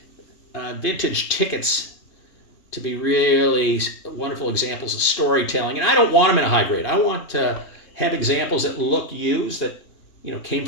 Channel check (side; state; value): right; late; 2.7 ms